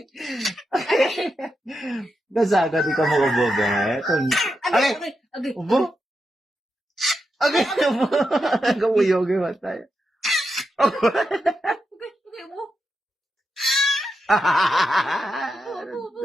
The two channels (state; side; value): normal; both; correlation 0.86